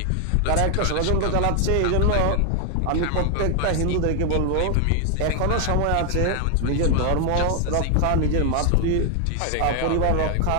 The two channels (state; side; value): different; both; correlation 0.00